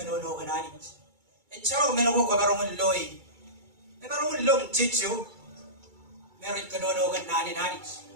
kenani. Ecalo menoko kabarong loi, kabarong lom cicu, merit kenono kenani nani.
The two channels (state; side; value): late; left; 2.3 ms